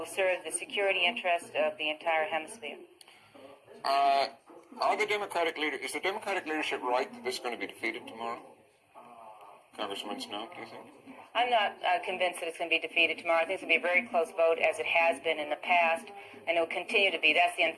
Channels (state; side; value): identical; both; correlation 1.00